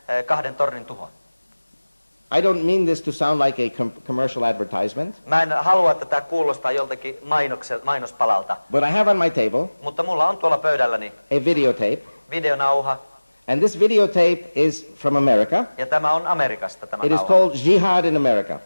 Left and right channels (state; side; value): inverted; both; correlation -1.00